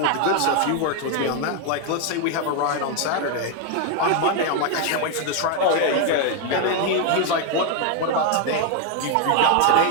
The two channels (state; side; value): different; both; correlation 0.01